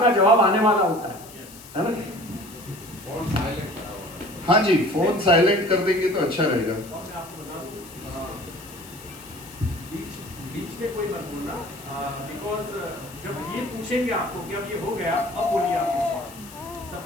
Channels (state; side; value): noise; left; hiss, 18 dB below the sound